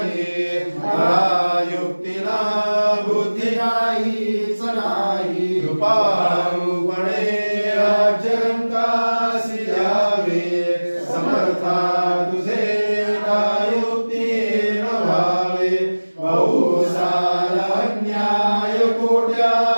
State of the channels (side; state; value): both; inverted; correlation -1.00